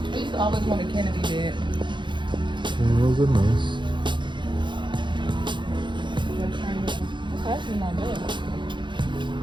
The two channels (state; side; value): late; left; 0.23 ms